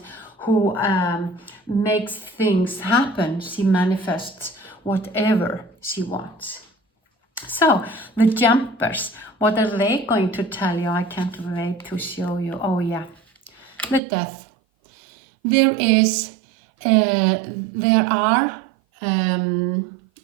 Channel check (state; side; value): drops out; left; at 14.0 s